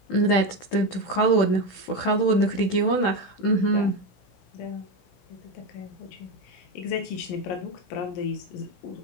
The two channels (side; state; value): right; late; 16 ms